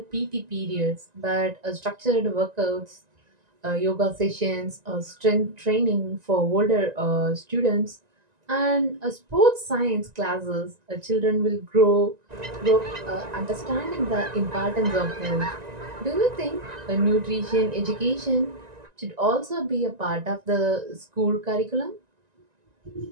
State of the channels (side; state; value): left; late; 1.9 ms